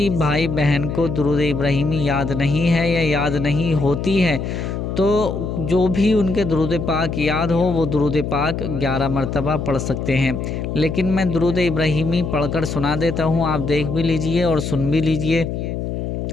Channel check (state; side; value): noise; left; hum, 4 dB below the sound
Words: بھائی بہن کو درود ابراہیمی یاد نہیں ہے یا یاد نہیں ہوتی ہے تو جو بھی ان کے درود پاک یاد ہو وہ درود پاک 11 مرتبہ پڑھ سکتے ہیں، لیکن میں درود ابراہیمی پڑھ کر سنا دیتا ہوں، آپ دیکھ بھی لیجئے اور سن بھی لیجئے۔